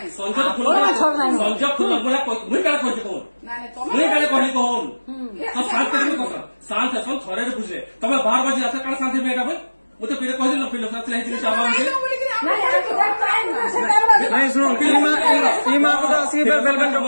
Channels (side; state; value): both; inverted; correlation -1.00